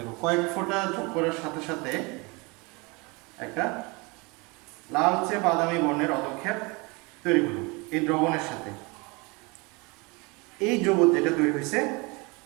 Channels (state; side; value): quieter; left; 27.5 dB